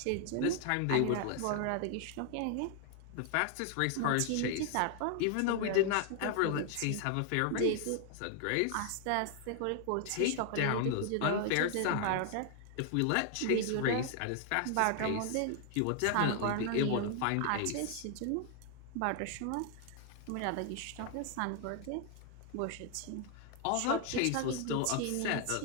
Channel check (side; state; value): both; different; correlation 0.00